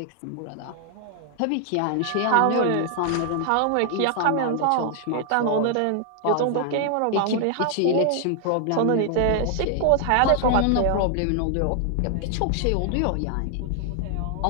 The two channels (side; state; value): both; different; correlation 0.00